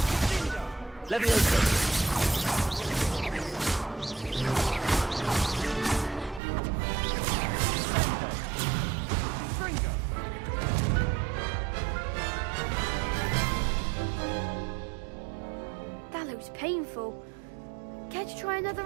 Leviosa. That looks painful. Care to try another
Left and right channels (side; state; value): left; drops out; at 6.4 s